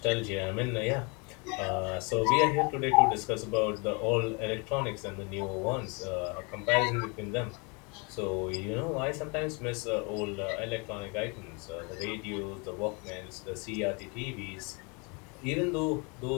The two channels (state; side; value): quieter; right; 31.4 dB